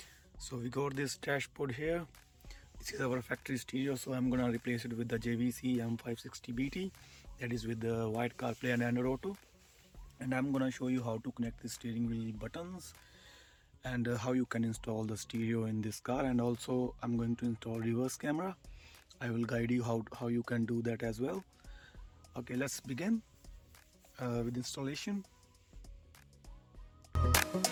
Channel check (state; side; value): identical; both; correlation 1.00